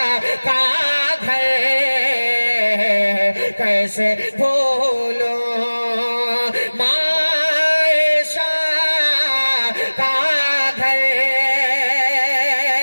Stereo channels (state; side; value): inverted; both; correlation -1.00